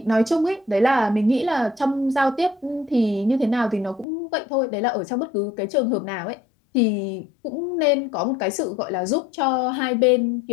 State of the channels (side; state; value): right; drops out; at 4.0 s